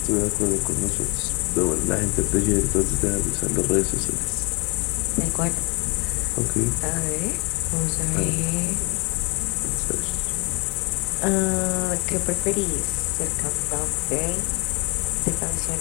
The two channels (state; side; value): quieter; right; 28.5 dB